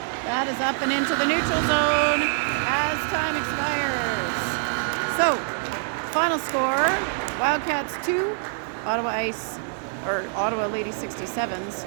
that is up and into the neutral zone as time expires. So, final score, Wildcats 2, Ottawa Lady 67s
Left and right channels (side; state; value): left; silent; 62 dB below the other